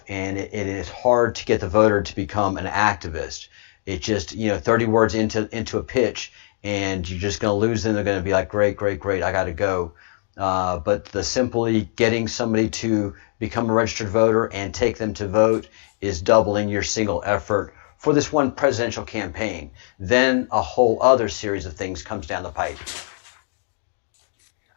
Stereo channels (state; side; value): silent; right; digital silence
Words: and it is hard to get the voter to become an activist. It just 30 words into a pitch, and you're just going to lose them. They're going to be like, great, I got to go. But the simply getting somebody to become a registered voter and take them to vote is doubling your single effort for this one presidential campaign. Then a whole other series of things comes down the pipe.